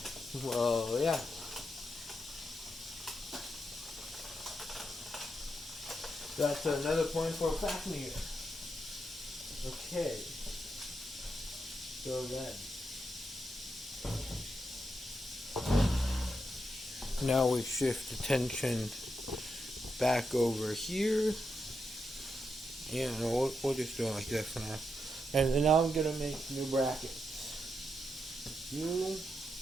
Well, yeah. That's another point for Fafnir. Okay. So then. Now we shift attention back over here. Yeah, no, we'll just do it like that for now. And now I'm going to make new brackets.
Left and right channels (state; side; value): normal; both; correlation 0.84